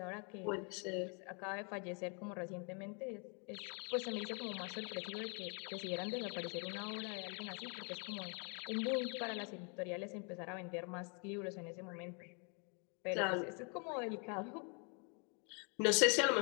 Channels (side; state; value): right; quieter; 36.9 dB